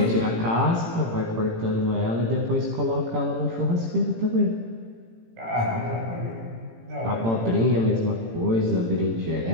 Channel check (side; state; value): left; late; 18 ms